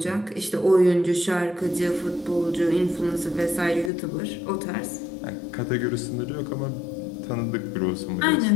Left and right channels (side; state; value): right; drops out; at 3.9 s